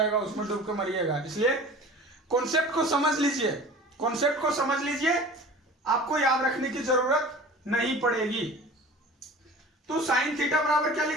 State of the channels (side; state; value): both; normal; correlation 0.41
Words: उसमें डूब के मरिएगा। इसलिए कॉन्सेप्ट को समझ लीजिए, कॉन्सेप्ट को समझ लीजिए, आपको याद रखने की जरूरत नहीं पड़ेगी। तो साइन थीटा बराबर क्या